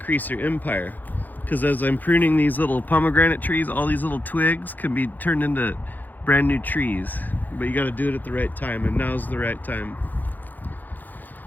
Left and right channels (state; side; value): late; right; 0.085 ms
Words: your empire. Because as I'm pruning these little pomegranate trees, all these little twigs can be turned into brand new trees. But you got to do it at the right time, and now's the right time.